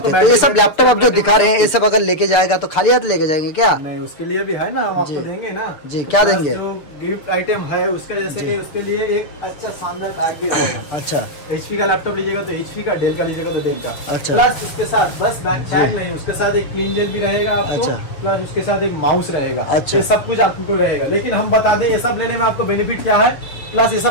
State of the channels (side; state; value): right; late; 6.7 ms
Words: है। तो ये सब लैपटॉप आप जो दिखा रहे हैं ये सब अगर लेके जाएगा तो खाली हाथ लेके जाएंगे क्या? नहीं, उसके लिए भी है ना, हम आपको देंगे ना जी। क्या देंगे? जो गिफ्ट आइटम है उसका, जैसे कि उसके लिए एक अच्छा शानदार बैग भी रहेगा। अच्छा, HP का लैपटॉप लीजिएगा तो HP का, डेल का लीजिएगा तो डेल का। अच्छा, प्लस उसके साथ बस बैग नहीं, उसके साथ एक क्लीन जेल भी रहेगा आपको। अच्छा, प्लस उसके साथ एक माउस रहेगा। अच्छा, ये सब कुछ आपको रहेगा। लेकिन हम बता दें ये सब लेने में आपको बेनिफिट क्या है, प्लस ये